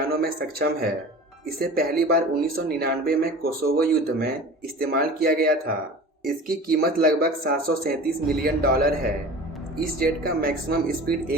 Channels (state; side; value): normal; both; correlation 0.38